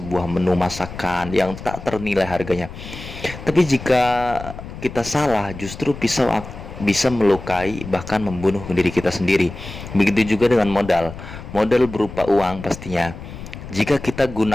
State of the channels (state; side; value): noise; left; rumble, 12 dB below the sound